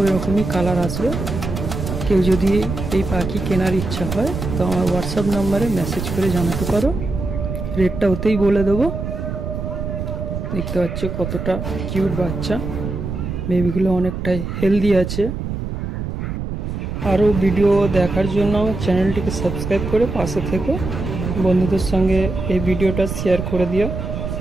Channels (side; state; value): right; noise; rumble, 5 dB below the sound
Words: রকমই কালার আসবে। কেউ যদি এই পাখি কেনার ইচ্ছা হয় তো আমার হোয়াটসঅ্যাপ নাম্বারে মেসেজ করে জানাতে পারো, রেটটা ওতেই বলে দেবো। দেখতে পাচ্ছ কতটা কিউট বাচ্চা, বেবিগুলো অনেকটাই হেলদি আছে। আরও ভিডিও দেখার জন্য আমার চ্যানেলটিকে সাবস্ক্রাইব করে পাশে থেকো। বন্ধুদের সঙ্গে এই ভিডিওটা শেয়ার করে দিও।